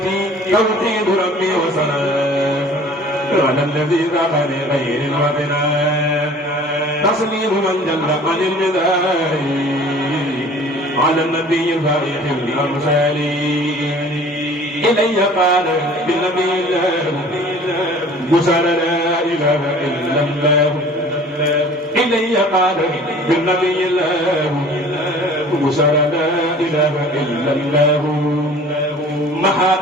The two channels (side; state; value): both; normal; correlation 0.47